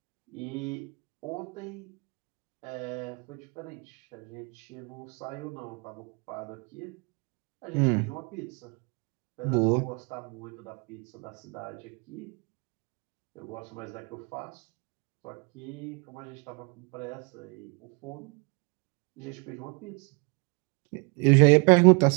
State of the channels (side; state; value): left; quieter; 32.8 dB